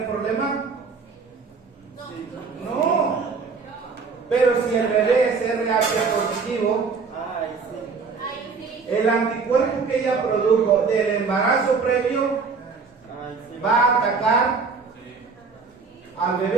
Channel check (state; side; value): quieter; left; 4.9 dB